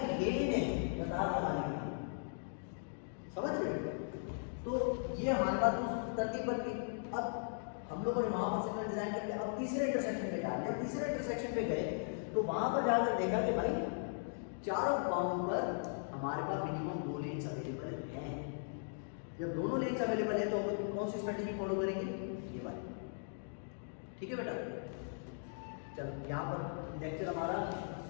लेन है कतार लगाने के लिए, समझ रहे। तो ये हमारे पास तरतीब बन गई। अब हम लोगों ने वहां पर सिग्नल डिजाइन कर लिया, अब तीसरे इंटरसेक्शन पे डाल दिया। तीसरे इंटरसेक्शन पे गए तो वहां पर जाकर देखा कि भाई चारों बाउंड पर हमारे पास मिनिमम 2 लेन्स अवेलेबल हैं। जब दोनों लेन्स अवेलेबल है तो हम कौन सी स्ट्रेटेजी फॉलो करेंगे, ये वाली, ठीक है बेटा। चलो यहाँ पर लेक्चर हमारा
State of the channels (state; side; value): silent; right; digital silence